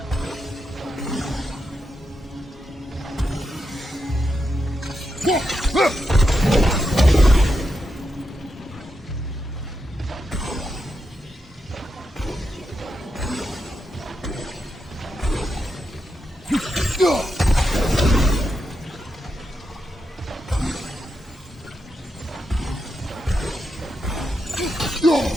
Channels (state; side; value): normal; both; correlation 0.86